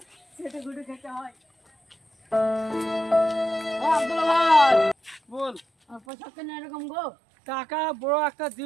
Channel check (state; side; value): drops out; left; at 6.0 s